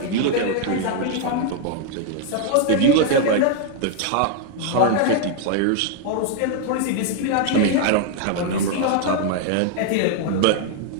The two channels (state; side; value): different; both; correlation 0.00